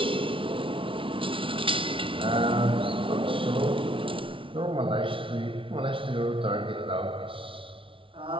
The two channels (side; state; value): left; late; 0.25 ms